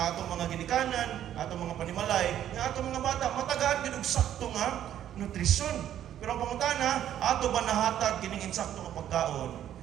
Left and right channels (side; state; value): left; quieter; 11.0 dB